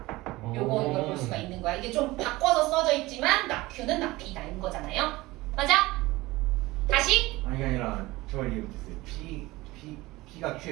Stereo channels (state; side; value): quieter; left; 20.0 dB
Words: 요거 이걸 볼 수가 있는 거야. 이게 좀 바꿔서 써져 있지만 not Q는 not P다인 거잖아요. 맞아? 다시? 아니 아니라 저 이해 못했어요. P가